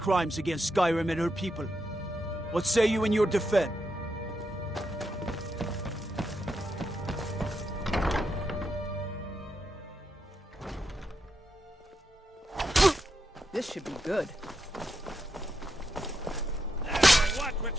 against Skyrim and her people. What say you in your defense? This should be good. Watch what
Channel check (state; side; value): normal; both; correlation 0.84